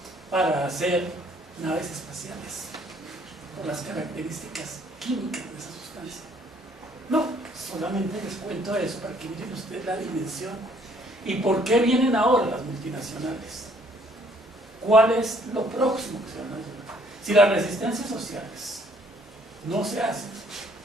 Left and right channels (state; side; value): normal; both; correlation 0.63